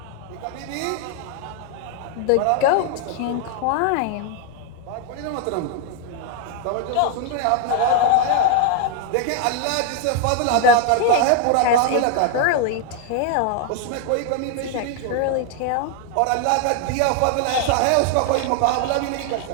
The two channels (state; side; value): different; both; correlation 0.01